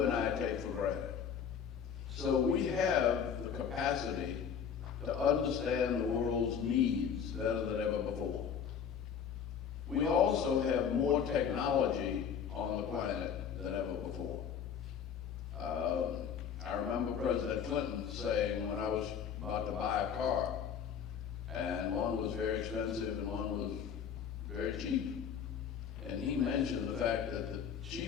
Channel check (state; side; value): quieter; right; 7.5 dB